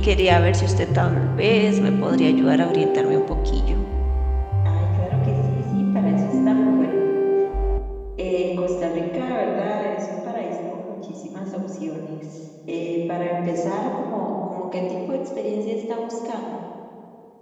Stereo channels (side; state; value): both; identical; correlation 1.00